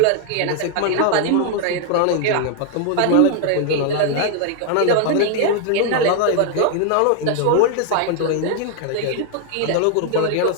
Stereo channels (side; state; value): both; different; correlation 0.00